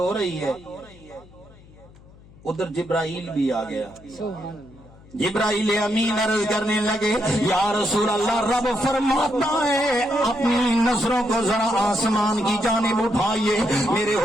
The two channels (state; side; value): noise; left; hum, 24 dB below the sound